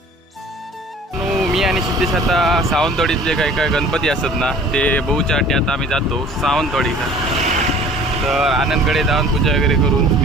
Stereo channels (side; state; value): both; normal; correlation 0.48